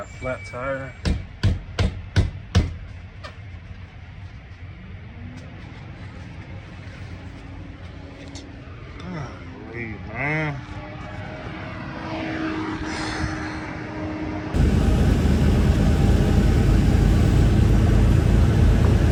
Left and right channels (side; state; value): both; identical; correlation 1.00